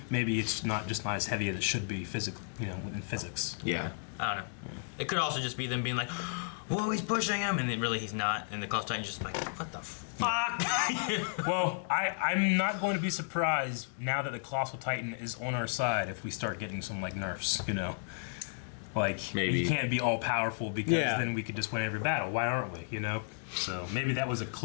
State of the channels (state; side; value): silent; right; digital silence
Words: maybe it's not as heavy as it should be in physics. Yeah. I don't know. It could also just be them being like, whoa, he's pushing him, and then really he's not, and the Colossal Titan's just like, what the fuck? Well, I'm not going to be surprised now that the Colossal Titan is on our side if we start getting some, like, nerfs, you know? Like, Maybe. he can't be all powerful because Yeah. then we could just win every battle. Why aren't we, you know? So maybe that was a